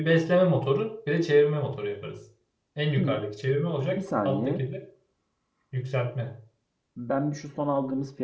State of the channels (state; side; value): identical; both; correlation 1.00